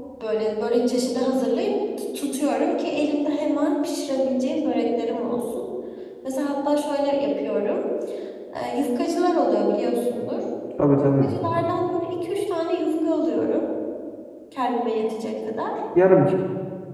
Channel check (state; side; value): identical; both; correlation 1.00